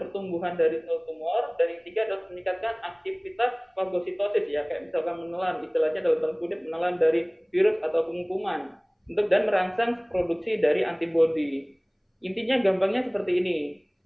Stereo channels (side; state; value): both; identical; correlation 1.00